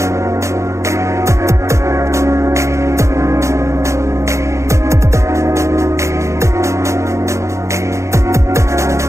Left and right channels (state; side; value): late; left; 0.14 ms